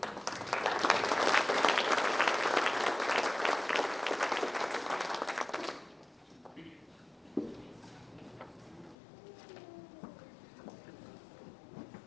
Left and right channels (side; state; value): right; drops out; at 9.0 s